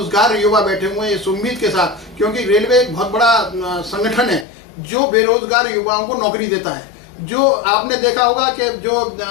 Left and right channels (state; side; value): drops out; right; at 4.5 s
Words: युवा बैठे हुए हैं इस उम्मीद के साथ, क्योंकि रेलवे एक बहुत बड़ा संगठन है जो बेरोजगार युवाओं को नौकरी देता है। जो आपने देखा होगा कि जो